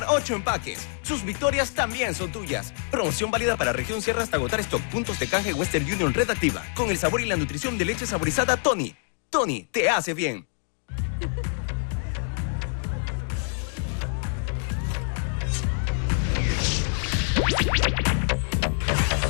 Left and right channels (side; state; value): right; silent; 61 dB below the other